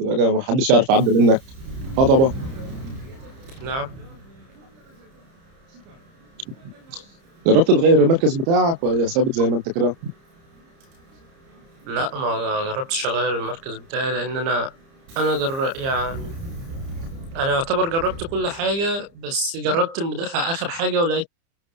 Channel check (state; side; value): late; left; 30 ms